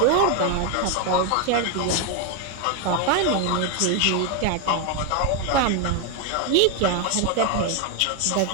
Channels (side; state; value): both; different; correlation 0.01